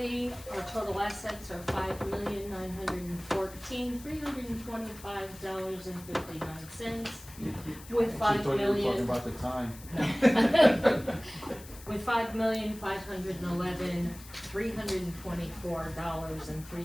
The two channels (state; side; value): noise; left; hiss, 18 dB below the sound